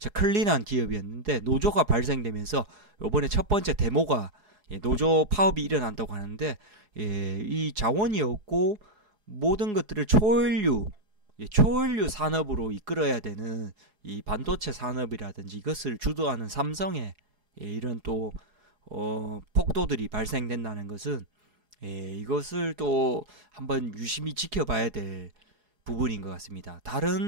클린한 기업이었는데, 노조가 발생되면서 이번에 첫 번째 데모가 노조 파업이 일어난다고 하는데, 이 자원이 없고 모든 것들을 초연료 산업으로 이끌어야 되는 이 반도체 산업이라든지 이것을 주도하는 삼성의 이런 또 폭도들이 발생된다는 것은 이것을 또 한번 유심히 지켜봐야 될 부분인 것 같습니다.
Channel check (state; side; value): late; left; 4.8 ms